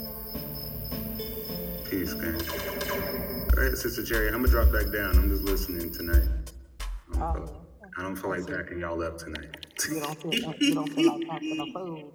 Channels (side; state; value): both; identical; correlation 1.00